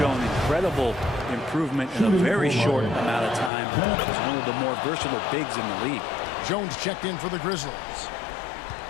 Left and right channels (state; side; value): drops out; right; at 3.5 s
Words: incredible improvement in a very short amount of time. He's one of the more versatile bigs in the league. Jones checked in for the Grizzlies.